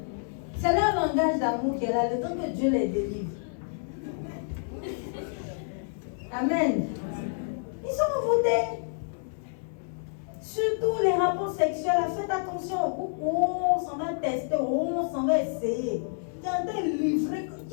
C'est leur langage d'amour qui est là, le temps que Dieu les délivre. Amen. Ils sont envoûtés. Surtout les rapports sexuels, faites attention. Oh, on s'en va tester, oh, on s'en va essayer. Tu es en train de livrer.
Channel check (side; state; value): right; silent; digital silence